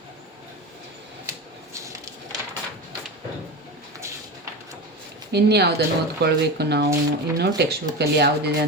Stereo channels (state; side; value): normal; both; correlation 0.24